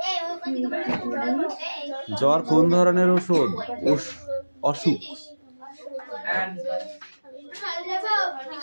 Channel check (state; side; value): inverted; both; correlation -1.00